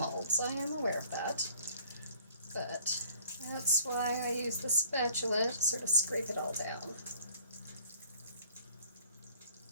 I am aware of that. But that's why I use the spatula to sort of scrape it all down.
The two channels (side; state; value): both; inverted; correlation -0.56